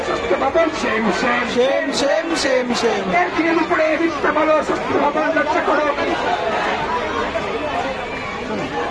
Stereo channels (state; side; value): identical; both; correlation 1.00